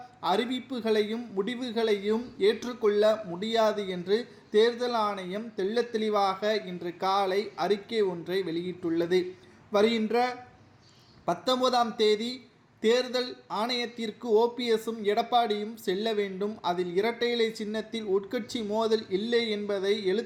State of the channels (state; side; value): identical; both; correlation 1.00